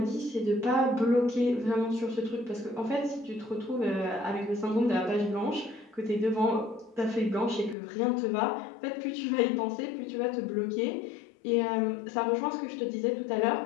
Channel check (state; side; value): drops out; right; at 7.8 s